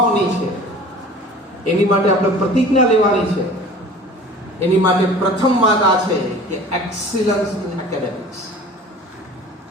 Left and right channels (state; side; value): normal; both; correlation 0.43